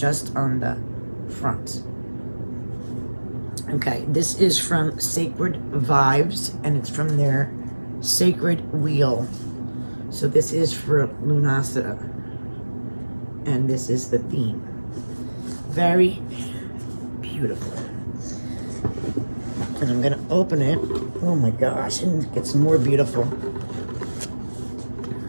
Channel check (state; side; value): inverted; both; correlation -1.00